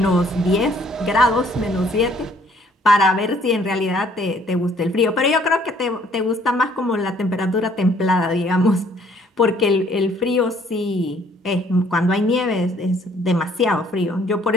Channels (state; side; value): normal; both; correlation 0.61